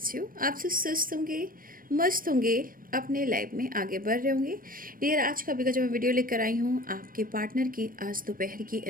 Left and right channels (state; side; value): late; left; 0.41 ms